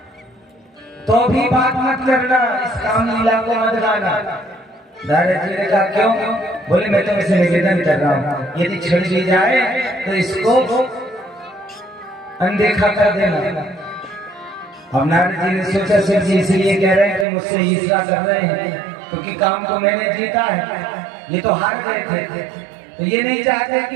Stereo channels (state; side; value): drops out; left; at 17.2 s